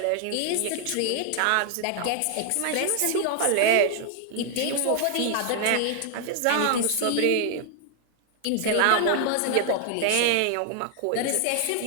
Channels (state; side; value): different; both; correlation 0.00